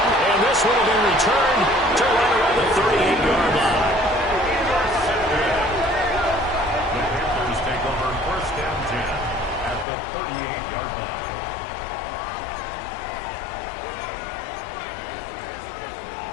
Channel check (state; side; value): drops out; right; at 9.9 s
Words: And this one will be returned to right around the 38-yard line. The Panthers take over 1st and 10 at the 38-yard line.